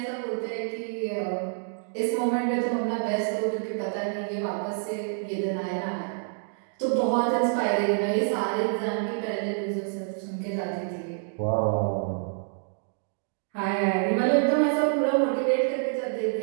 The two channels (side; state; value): left; silent; digital silence